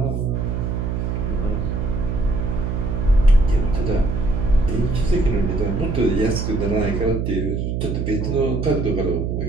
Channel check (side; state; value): right; noise; hum, 1 dB below the sound